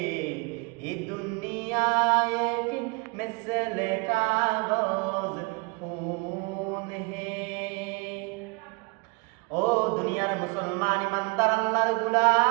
ये दुनिया एक मिसल कागज फूल है। ও দুনিয়ার মুসলমান ইমানদার আল্লাহর গোলাম,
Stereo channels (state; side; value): quieter; left; 29.9 dB